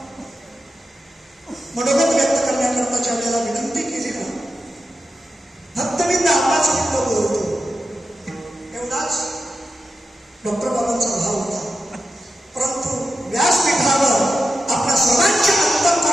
मनोगत व्यक्त करण्याकरता ज्या वेळेला विनंती केली ना, फक्त मी 10-5 मिनिटं बोलतो एवढाच डॉक्टर बाबांचा भाव होता. परंतु व्यासपीठावर आपल्या सर्वांच्या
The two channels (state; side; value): normal; both; correlation 0.91